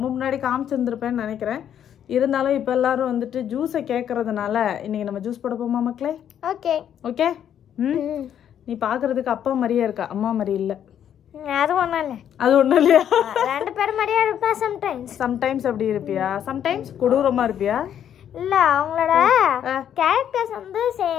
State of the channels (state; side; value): quieter; right; 9.6 dB